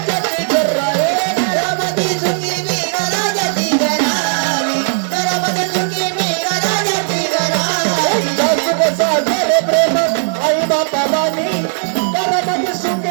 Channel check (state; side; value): silent; left; digital silence